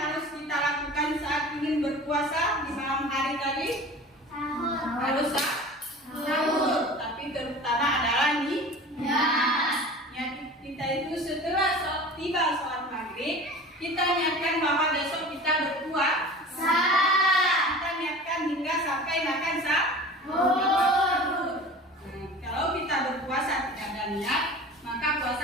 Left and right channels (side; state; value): both; normal; correlation 0.38